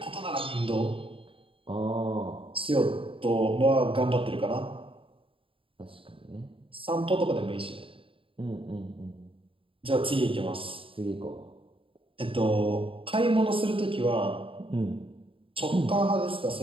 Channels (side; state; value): left; late; 0.26 ms